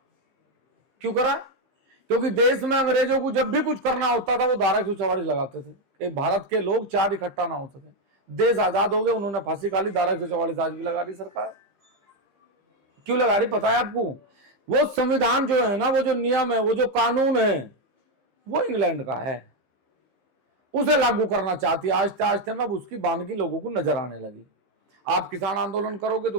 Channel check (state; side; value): late; left; 15 ms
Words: क्यों करा? क्योंकि देश में अंग्रेजों को जब भी कुछ करना होता था वो धारा 144 लगाते थे कि भारत के लोग चार इकट्ठा ना हो सके। देश आजाद हो गए, उन्होंने फांसी खा ली, धारा 144 आज भी लगा रही सरकार। क्यों लगा रही पता है आपको? वो संविधान जो है ना, वो जो नियम है, वो जो कानून है, वो इंग्लैंड का है, उसे लागू करना चाहती है। आहिस्ते आहिस्ते में अब उसकी बानगी लोगों को नजर आने लगी। आप किसान आंदोलन करोगे तो